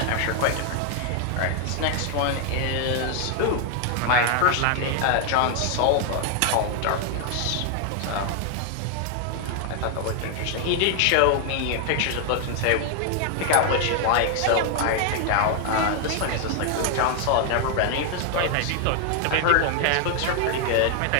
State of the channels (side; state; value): both; different; correlation 0.00